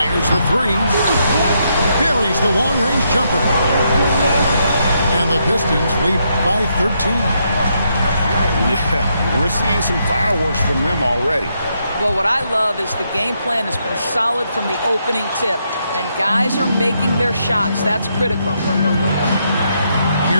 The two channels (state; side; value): inverted; both; correlation -0.78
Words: the three. Buries the long-range jumper. And the Pistons lead by 13. Yeah, we're seeing some fireworks from them already. Well, what I love is the game plan has been solid from the opening tip. And guys are making their shots. That's critical.